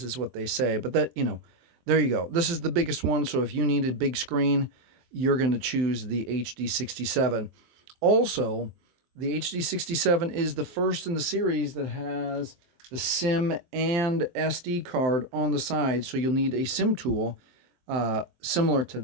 is what they say. But that, there you go. This is the biggest one. So if you need a big screen, you're going to choose the HD67. Also, the HD67 is the first in the series that has the SIM and SD card on the side. So you'll need a SIM tool similar to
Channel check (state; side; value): late; left; 23 ms